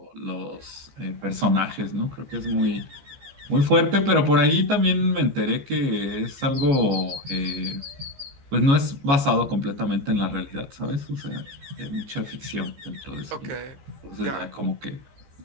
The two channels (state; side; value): late; left; 15 ms